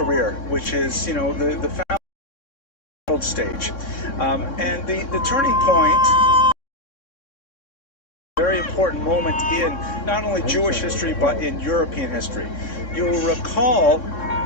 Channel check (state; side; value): late; right; 3.6 ms